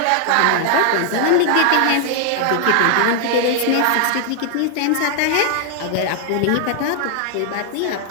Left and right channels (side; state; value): both; different; correlation 0.00